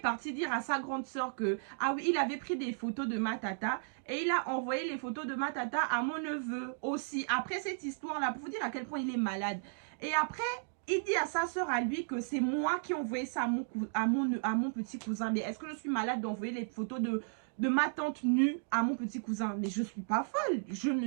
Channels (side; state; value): left; silent; digital silence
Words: parti dire à sa grande sœur que, ah oui, il avait pris des photos de ma tata et il a envoyé les photos de ma tata à mon neveu aussi. Après cette histoire-là, pour vous dire à quel point il est malade. Et après, il dit à sa sœur à lui que c'est moi qui ai envoyé ça à mon petit cousin. Mais est-ce que je suis malade d'envoyer les photos de ma tante nue à mon petit cousin? Mais je suis pas folle. Je